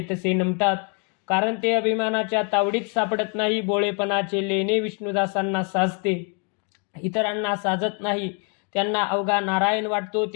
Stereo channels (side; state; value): right; quieter; 36.6 dB